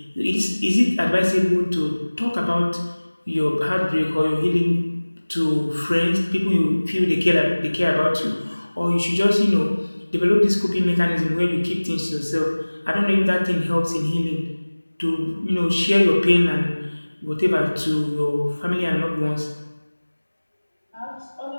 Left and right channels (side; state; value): both; inverted; correlation -1.00